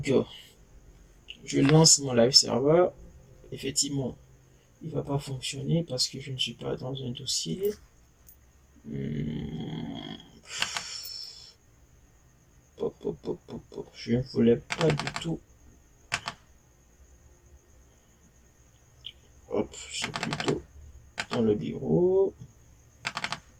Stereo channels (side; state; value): both; identical; correlation 1.00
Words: je lance mon live server. Effectivement, il va pas fonctionner parce que je ne suis pas dans un dossier. Je ne voulais pas du tout. Hop, c'est plutôt dans le bureau.